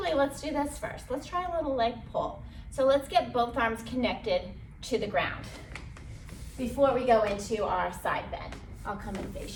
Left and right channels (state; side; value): identical; both; correlation 1.00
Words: let's do this first. Let's try a little leg pull. So let's get both arms connected to the ground before we go into our side bend. I'll come and